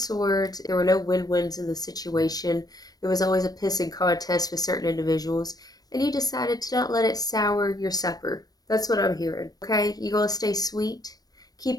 there were no win-wins in the situation. There was always a pissing contest with certain individuals, and you decided to not let it sour your supper. That's what I'm hearing. Okay, you gonna stay sweet?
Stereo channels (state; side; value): late; right; 0.19 ms